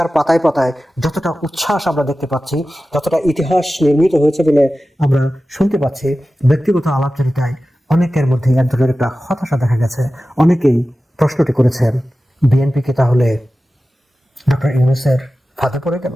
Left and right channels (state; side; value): normal; both; correlation 0.95